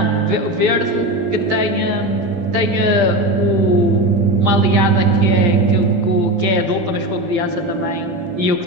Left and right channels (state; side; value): late; left; 12 ms